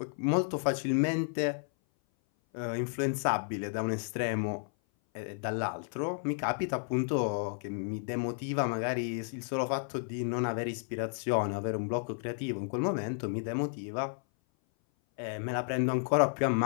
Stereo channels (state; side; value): silent; right; 56 dB below the other